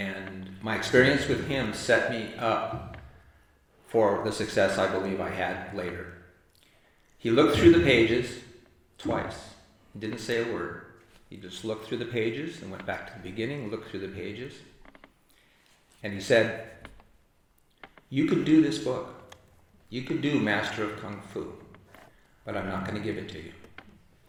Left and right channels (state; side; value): identical; both; correlation 1.00